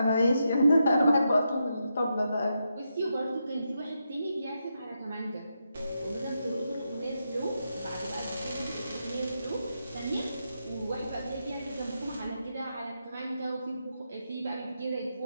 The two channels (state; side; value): inverted; both; correlation -0.84